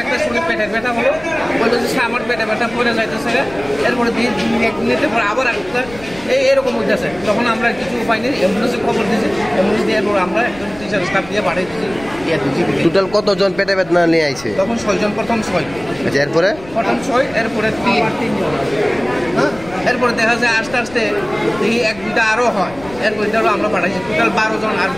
একটা স্টুডেন্ট পেটের ব্যথা হলো, বললো যে আমার পেটে ব্যথা পড়ে যাইতেছে, এরপরে 1 মিনিটের পর আবার একটা এরকম হইতেছে। তখন আমরা কিছু উপায় নেই, অ্যাম্বুলেন্সে খবর দিয়েছি, অ্যাম্বুলেন্স দেওয়ার পর আমরা একজন টিচার স্টাফ দিয়ে পাঠিয়ে দিয়েছি। টোটাল কতজন পেটে ব্যথা নিয়ে আইছে? তখন 6 জন, প্রথম 6। আচ্ছা, এরপরে প্রথম 6, এরপরে 3 জন। হ্যাঁ, এরপরে দেখা যায় আস্তে আস্তে দেখি 1-2টা আরও হয়, এরপরে আমরা পাঠাইছি টোটাল 12 জন। আর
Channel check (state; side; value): noise; left; rumble, 19 dB below the sound